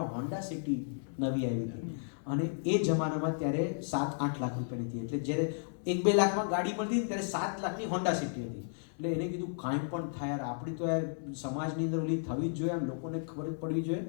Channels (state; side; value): silent; right; digital silence